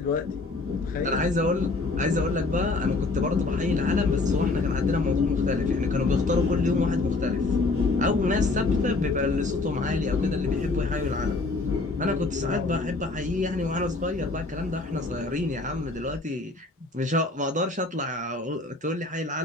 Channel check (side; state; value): right; quieter; 3.3 dB